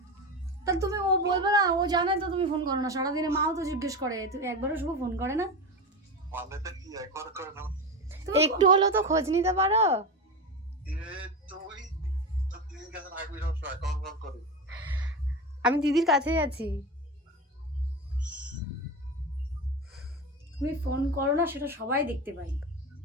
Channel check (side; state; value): both; normal; correlation 0.22